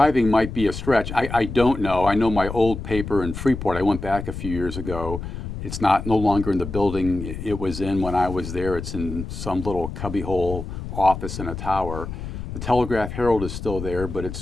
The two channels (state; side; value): noise; left; rumble, 8 dB below the sound